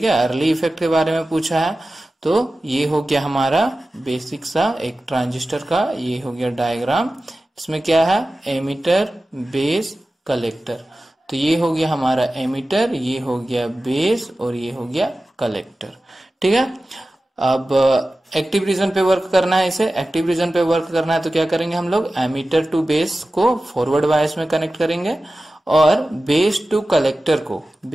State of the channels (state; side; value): normal; both; correlation 0.95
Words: है, अर्ली इफेक्ट के बारे में पूछा है। तो ये हो गया हमारा बेसिक सा एक ट्रांजिस्टर का, ये हो गया डायग्राम, इसमें क्या है, एमिटर बेस कलेक्टर। तो ये हो गया हमारा एमिटर, ये हो गया बेस और ये हो गया कलेक्टर, ठीक है। अब एक्टिव रीजन पे वर्क करना है, इसे एक्टिव रीजन पे वर्क करना है, तो क्या करेंगे हम लोग, एमिटर टू बेस को फॉरवर्ड बायस में कनेक्ट करेंगे और बेस टू कलेक्टर